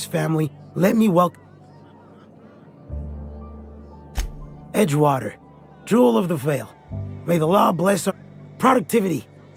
family, let me welcome... Edgewater, Jewel of the Vale. May the law bless our productivity.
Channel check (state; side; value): identical; both; correlation 1.00